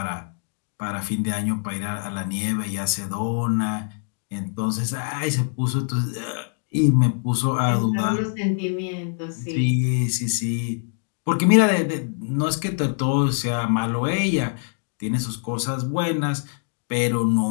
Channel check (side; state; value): right; silent; 63 dB below the other